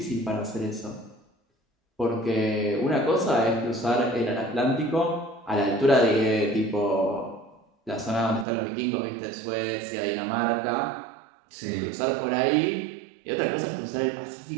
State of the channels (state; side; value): drops out; left; at 8.5 s